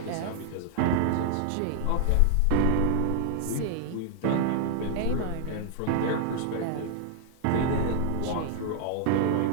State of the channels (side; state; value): both; different; correlation 0.00